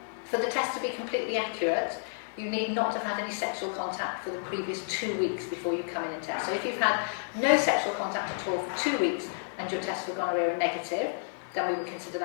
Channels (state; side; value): silent; right; digital silence